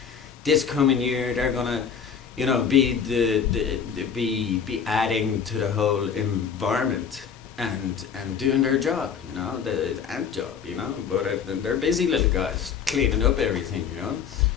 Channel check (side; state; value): right; quieter; 7.1 dB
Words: this coming year. They're gonna, be be adding to the whole environment and doing their job, the ant job, But they're busy little guys cleaning up everything,